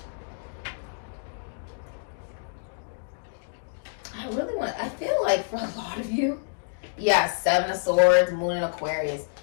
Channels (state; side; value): silent; right; digital silence